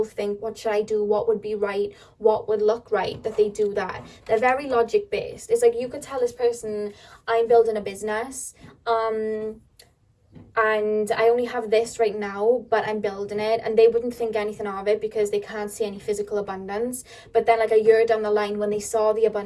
think, what should I do, what would be right, what would look right, that they do that. They're very logic based. It's like you could tell this person, I'm building a business, and I only have this right now, but I'm building it, and they wouldn't think anything of it because they can't see any physical abundance. But then like a year down the line, when they saw the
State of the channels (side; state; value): both; identical; correlation 1.00